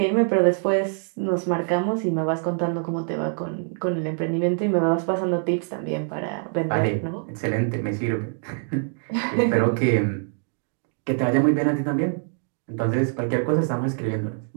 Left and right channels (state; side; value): silent; left; 57 dB below the other